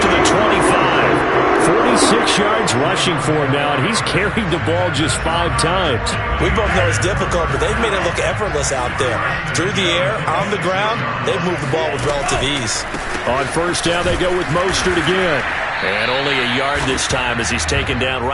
to the 25. 46 yards rushing for him now, and he's carried the ball just 5 times. We both know it's difficult, but they've made it look effortless out there. Through the air, on the ground, they've moved the ball with relative ease. On 1st down, they go with Mostert again. And only a yard this time as he's taken down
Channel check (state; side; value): identical; both; correlation 1.00